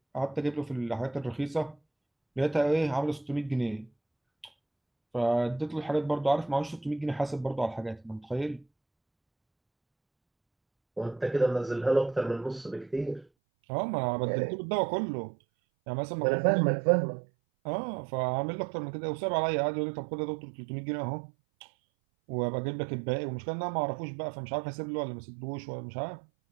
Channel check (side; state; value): left; drops out; at 13.2 s